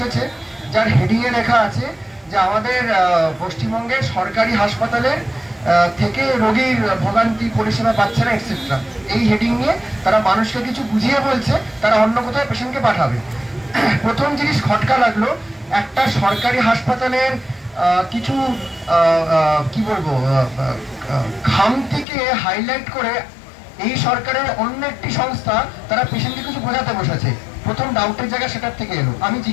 যার হেডিংয়ে লেখা আছে যে আমাদের পশ্চিমবঙ্গের সরকারি হাসপাতালের থেকে রোগীর ভোগান্তি পরিষেবা পাচ্ছে না এটসেট্রা। এই হেডিং নিয়ে তারা মানুষকে কিছু বুঝিয়ে বলছে তারা অন্য কোথাও পেশেন্টকে পাঠাবে। প্রথম জিনিস খটকা লাগলো, একটা সরকারি হাসপাতালের কিছু কি বলবো খামতিকে হাইলাইট করে এই সরকারের অন্য একটি সংস্থা তারা পেশেন্টকে কিছু বোঝাতে বসেছে। প্রথম ডাউটের জায়গা সেটার থেকে এলো।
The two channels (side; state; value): right; drops out; at 22.1 s